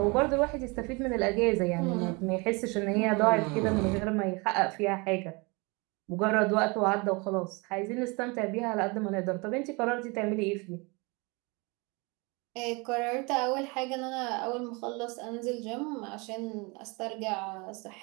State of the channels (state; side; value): quieter; left; 28.4 dB